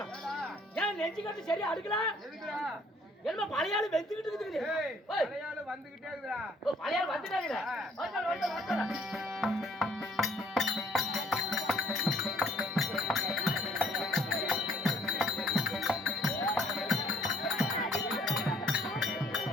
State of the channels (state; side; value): normal; both; correlation 0.62